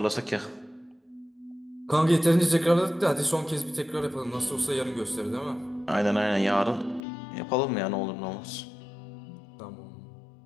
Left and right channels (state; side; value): drops out; right; at 7.0 s